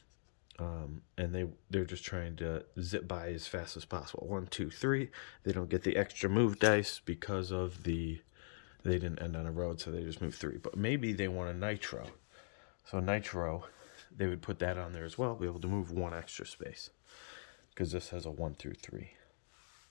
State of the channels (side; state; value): right; silent; digital silence